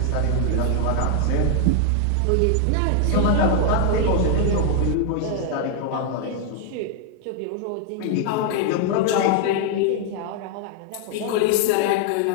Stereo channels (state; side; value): different; both; correlation 0.00